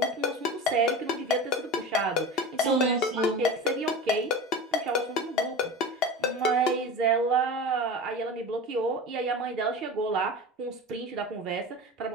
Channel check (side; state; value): both; normal; correlation 0.30